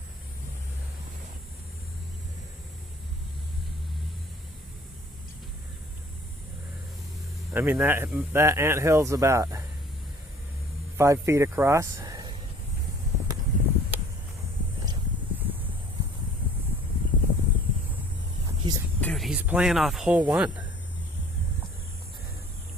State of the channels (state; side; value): normal; both; correlation 0.53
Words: I mean, that anthill's about 5 feet across. Dude, he's playing off hole one.